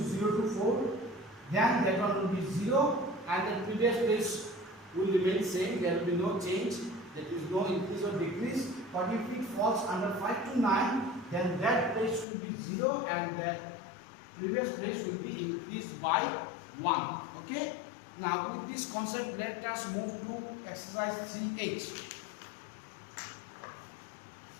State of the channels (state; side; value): drops out; right; at 12.2 s